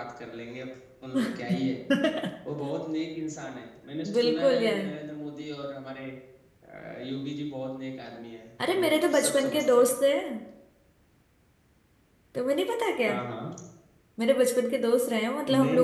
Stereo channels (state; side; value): identical; both; correlation 1.00